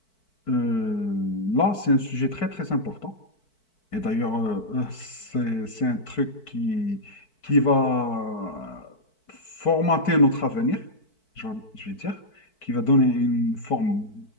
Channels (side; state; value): right; late; 4.5 ms